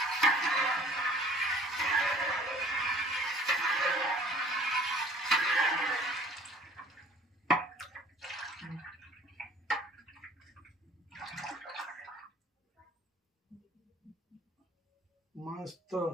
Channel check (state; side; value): normal; both; correlation 0.50